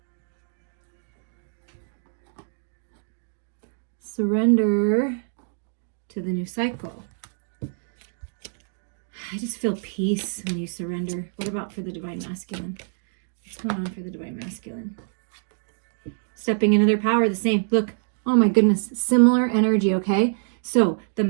Surrender to the new cycle. I just feel peace when you surrender. What about for the divine masculine? What's going on for the divine masculine? Stepping into their power, the same. Look, oh my goodness, similar energy, okay? So the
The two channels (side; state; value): left; silent; digital silence